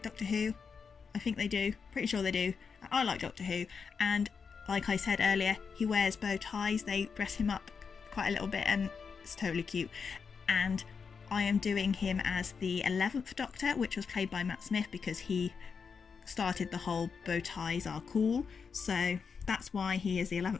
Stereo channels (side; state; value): right; quieter; 5.7 dB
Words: Doctor Who. I think they do. Pretty sure they do. I like Doctor Who. And like I said earlier, he wears bow ties. They dress him up quite a little bit, and it's totally cute. And I am doing him as the 11th Doctor, which was played by Matt Smith, because he started the whole bow ties are cool. So that's why he is the